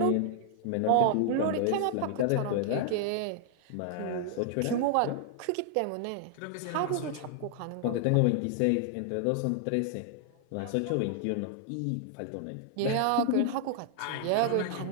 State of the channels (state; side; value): different; both; correlation 0.00